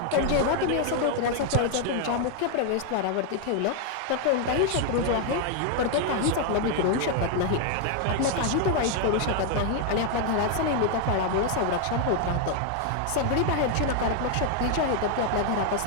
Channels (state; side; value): different; both; correlation 0.00